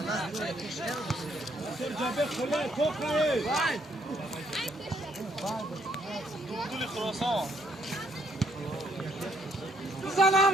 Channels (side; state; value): both; normal; correlation 0.70